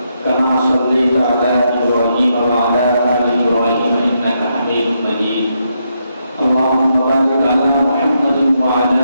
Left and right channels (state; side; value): inverted; both; correlation -0.80